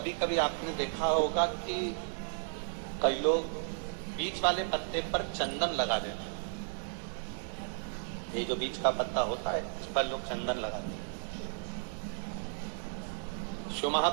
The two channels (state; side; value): silent; left; digital silence